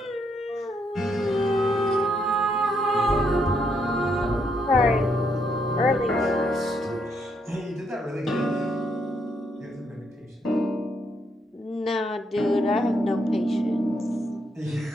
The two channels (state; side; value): normal; both; correlation 0.75